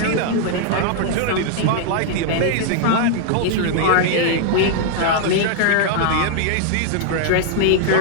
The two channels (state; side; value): different; both; correlation 0.00